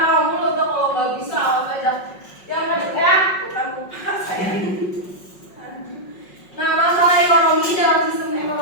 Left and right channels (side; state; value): right; late; 5.4 ms